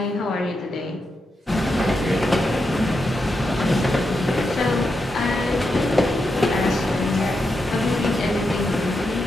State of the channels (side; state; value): both; normal; correlation 0.86